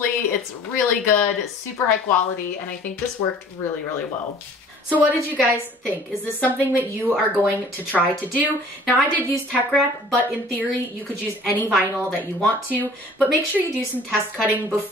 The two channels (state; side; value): normal; both; correlation 0.50